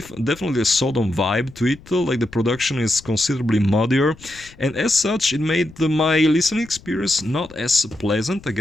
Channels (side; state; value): left; noise; rumble, 23 dB below the sound